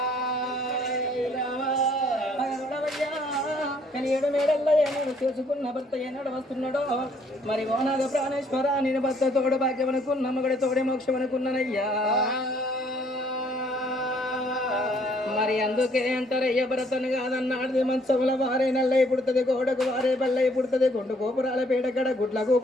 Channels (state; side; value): normal; both; correlation 0.64